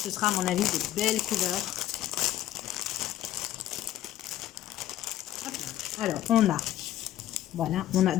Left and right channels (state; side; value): quieter; right; 13.3 dB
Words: sera à mon avis de belles couleurs. Alors on a